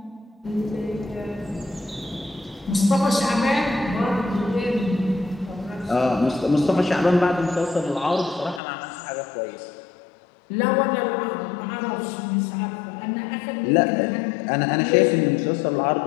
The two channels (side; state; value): right; drops out; at 8.6 s